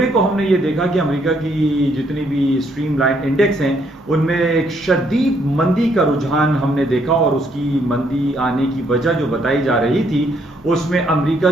को हमने ये देखा कि अमेरिका की जितनी भी स्ट्रीमलाइन इंडेक्स हैं उनमें एक शदीद मंदी का रुझान हमने देखा, और उसकी मंदी आने की वजह जो बताई जा रही थी उसमें अमेरिका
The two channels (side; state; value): both; normal; correlation 0.70